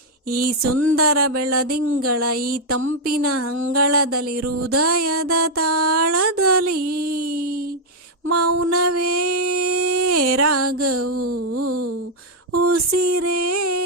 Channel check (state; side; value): normal; both; correlation -0.01